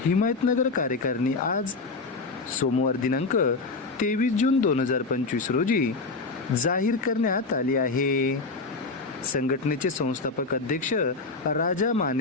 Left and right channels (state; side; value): quieter; right; 3.8 dB